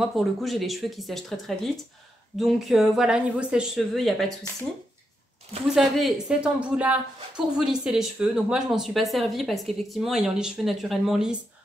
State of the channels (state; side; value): normal; both; correlation 0.83